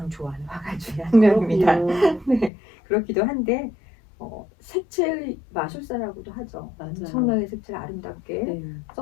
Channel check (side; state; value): right; drops out; at 2.5 s